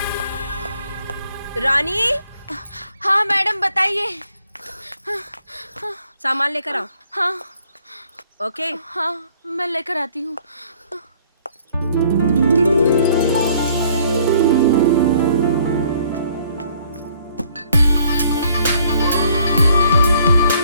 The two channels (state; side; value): inverted; both; correlation -0.62